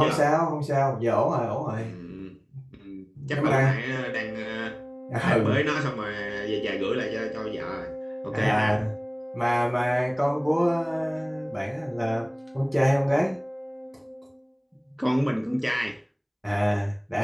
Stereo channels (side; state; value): both; identical; correlation 1.00